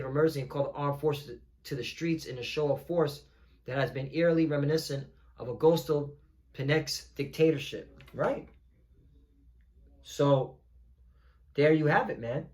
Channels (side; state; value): both; identical; correlation 1.00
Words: of emergency and call the armed forces to the streets in a show of force that has been eerily reminiscent of Augusto Pinochet's dictatorship. Right? So, there you have it, man.